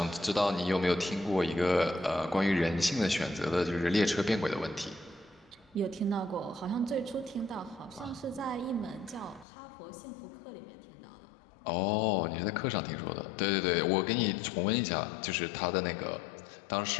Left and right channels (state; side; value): drops out; right; at 9.5 s